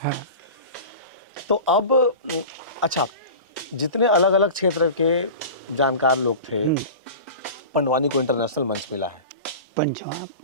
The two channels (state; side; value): inverted; both; correlation -0.34